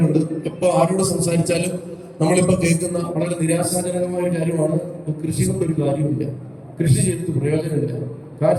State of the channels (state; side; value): identical; both; correlation 1.00